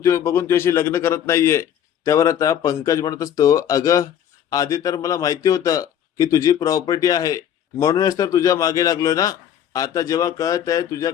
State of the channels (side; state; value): right; quieter; 9.8 dB